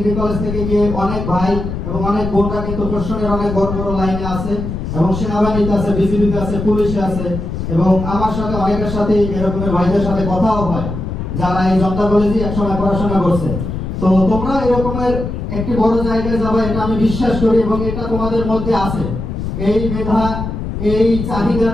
কলেজ থেকে গিয়ে অনেক ভাই এবং অনেক বোনরা কিন্তু প্রশাসনের অনেক বড় বড় লাইনে আছে এবং সেনাবাহিনীতে আছে, বিজিবিতে আছে, পুলিশে আছে, এবং আমার সাথে অনেকের সাথে এরকমের ভাইদের সাথে কথাও হয় যারা এই জনতা কলেজে একসময় পড়াশোনা করছে। তো তোমরা এরকমের একটি বড় জায়গায় যাবে এটা আমি বিশ্বাস করি এবং এটা তোমাদের মধ্যে আছে, এই মেধা এই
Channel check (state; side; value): noise; left; rumble, 5 dB below the sound